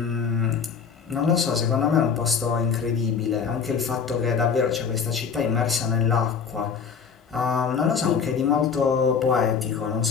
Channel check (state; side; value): quieter; right; 6.3 dB